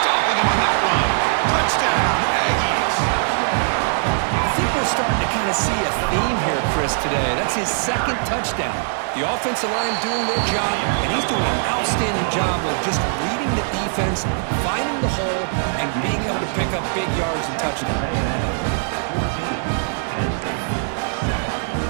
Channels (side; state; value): left; silent; 63 dB below the other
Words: him on that run. Touchdown, Aggies. I think we're starting to kind of see a theme here, Chris, today. That's his 2nd touchdown. The offensive line doing their job, and he's doing an outstanding job of just reading the defense, finding the hole, and being able to pick up big yards and touchdowns.